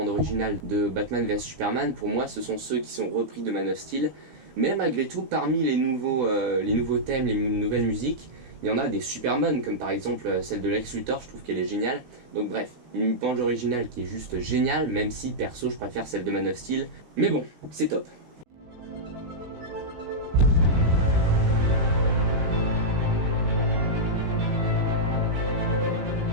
originale de Batman vs Superman, pour moi, ce sont ceux qui sont repris de Man of Steel, mais malgré tout, parmi les nouveaux thèmes, les nouvelles musiques, il y en a des super bonnes, comme par exemple celle de Lex Luthor, je trouve qu'elle est géniale. Donc bref, une bande originale qui est juste géniale, même si perso je préfère celle de Man of Steel. Mais bon, c'est top.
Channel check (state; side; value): late; left; 16 ms